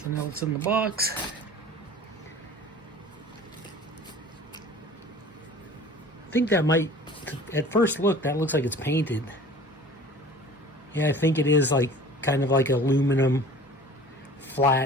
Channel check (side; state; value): both; normal; correlation 0.44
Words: else in the box. I think that might, at first look, that looks like it's painted. Yeah, I think it is like kind of like aluminum